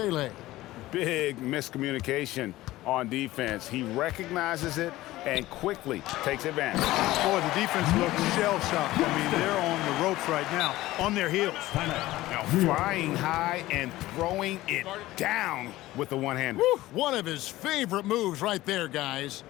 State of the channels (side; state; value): right; quieter; 16.9 dB